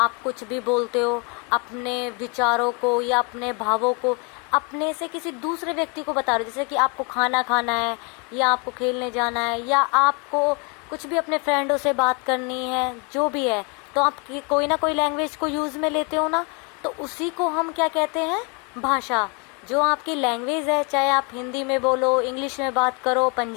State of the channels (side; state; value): right; quieter; 33.3 dB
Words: कुछ भी बोलते हो, अपने विचारों को या अपने भावों को अपने से किसी दूसरे व्यक्ति को बता रहे हो। जैसे कि आपको खाना खाना है, या आपको खेलने जाना है, या आपको कुछ भी अपने फ्रेंडों से बात करनी है, जो भी है, तो आप कोई ना कोई लैंग्वेज को यूज़ में लेते हो ना, तो उसी को हम क्या कहते हैं, भाषा। जो आपकी लैंग्वेज है, चाहे आप हिंदी में बोलो, इंग्लिश में बात करो,